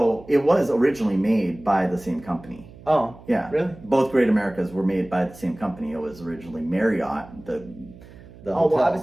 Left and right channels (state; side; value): noise; right; hum, 20 dB below the sound